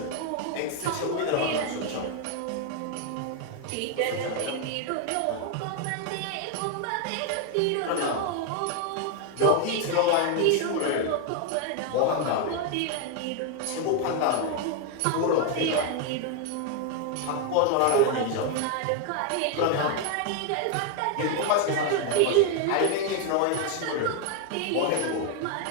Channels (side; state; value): both; different; correlation 0.01